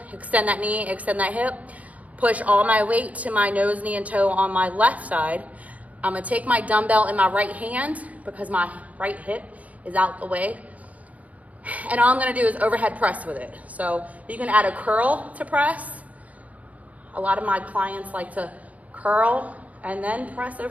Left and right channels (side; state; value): left; late; 0.070 ms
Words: extend that knee, extend that hip, push all my weight to my nose, knee, and toe on my left side. I'm gonna take my dumbbell in my right hand because my right hip is out the way. And all I'm gonna do is overhead press with it. So you can add a curl to press. A lot of my clients like to curl and then press